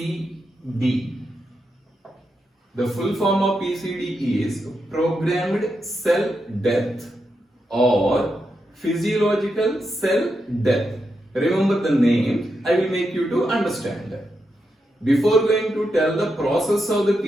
The full form of PCD is programmed cell death or physiological cell death. Remember the name, I will make you to understand. Before going to tell the process of the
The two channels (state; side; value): normal; both; correlation 0.85